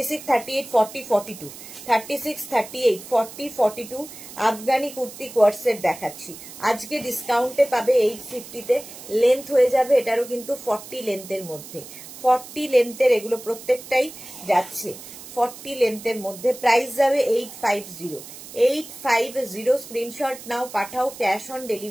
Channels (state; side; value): noise; right; hiss, 15 dB below the sound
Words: 38, 40, 42, 36, 38, 40, 42 আফগানি কুর্তি কোয়ার্সেট দেখাচ্ছি। আজকে ডিসকাউন্টে পাবে 850-তে। লেন্থ হয়ে যাবে এটারও কিন্তু 40 লেন্থের মধ্যে। 40 লেন্থের এগুলো প্রত্যেকটাই যাচ্ছে 40 লেন্থের মধ্যে। প্রাইস যাবে 850। 850 স্ক্রিনশট নাও, পাঠাও, cash on